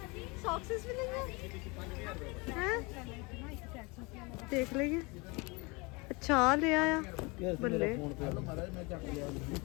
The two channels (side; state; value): right; quieter; 27.3 dB